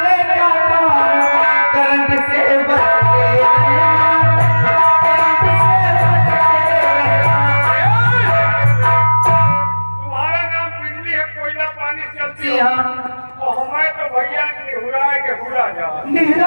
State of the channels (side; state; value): both; inverted; correlation -1.00